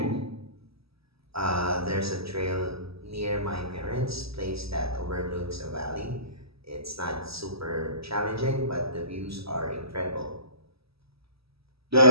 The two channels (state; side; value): late; left; 0.77 ms